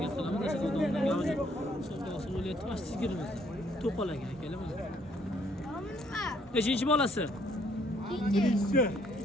qilamiz. O'sha savdoning gavji savdosi bo'layapti. Mana shu sigirimizda. To'qalagan akalar mana. Nechinchi bolasi? Birinchisi.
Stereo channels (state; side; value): normal; both; correlation 0.66